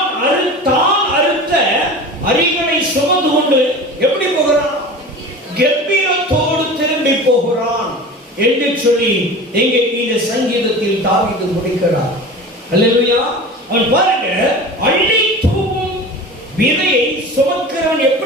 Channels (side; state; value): both; normal; correlation 0.35